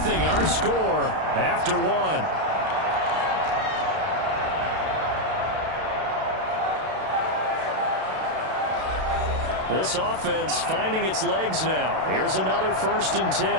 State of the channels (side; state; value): left; late; 32 ms